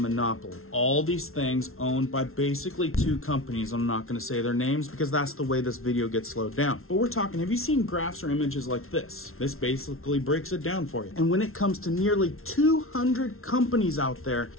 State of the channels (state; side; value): late; right; 0.62 ms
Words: All these things owned by basically two companies. I'm not gonna say their names because that's the way this video gets slowed down. But we're talking, have you seen graphs or images like this? This basically breaks it down for you. And when it comes to nearly 200 companies out there